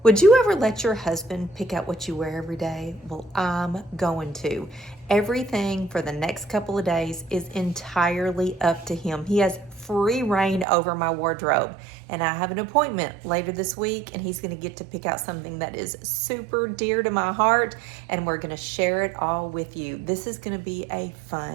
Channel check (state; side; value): drops out; left; at 10.7 s